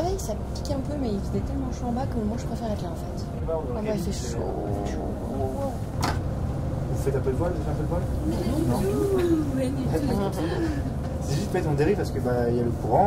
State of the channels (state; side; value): identical; both; correlation 1.00